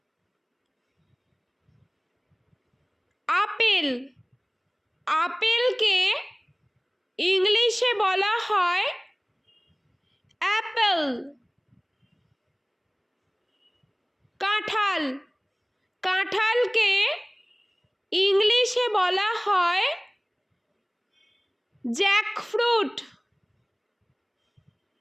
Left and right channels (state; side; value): identical; both; correlation 1.00